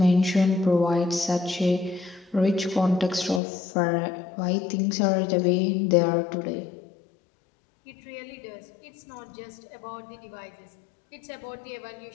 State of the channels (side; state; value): right; drops out; at 3.4 s